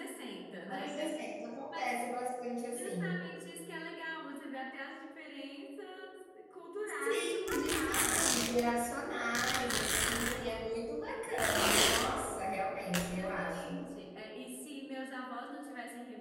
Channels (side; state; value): both; identical; correlation 1.00